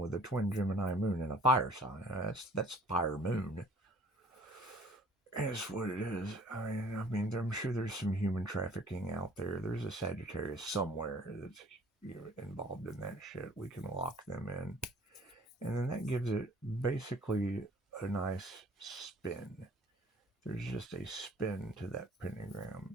a twin Gemini moon and a fire sign. That's fire moon. And it's what it is. I mean, I'm sure there's some human trafficking out there. There's a Sagittarius somewhere that's involved in that shit. We can lock them in, and then that gives it basically a nice spin. There's just a spin to that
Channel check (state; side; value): normal; both; correlation 0.53